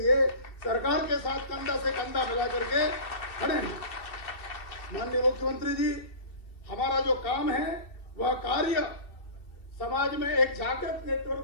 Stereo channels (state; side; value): late; right; 2.7 ms